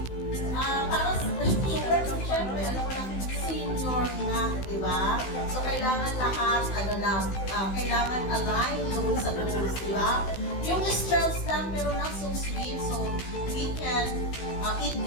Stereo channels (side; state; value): right; late; 16 ms